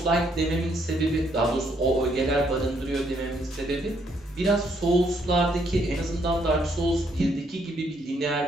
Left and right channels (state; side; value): normal; both; correlation 0.71